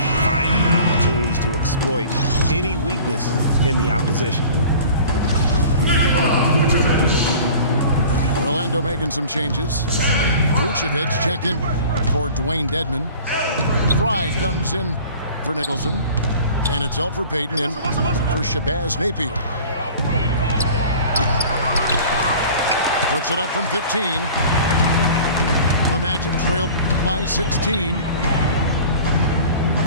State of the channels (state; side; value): inverted; both; correlation -0.43